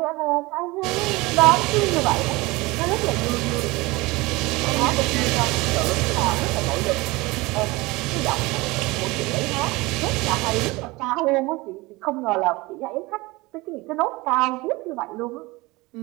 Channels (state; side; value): quieter; left; 22.3 dB